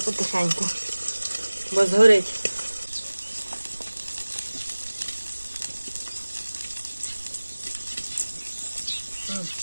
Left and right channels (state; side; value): inverted; both; correlation -1.00